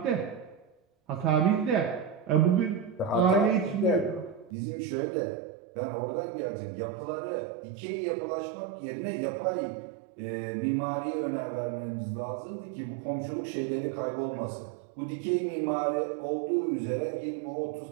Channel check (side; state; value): left; drops out; at 4.5 s